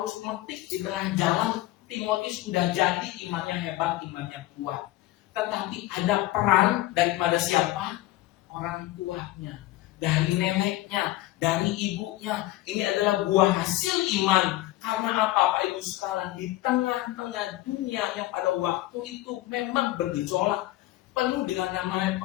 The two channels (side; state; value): right; quieter; 16.5 dB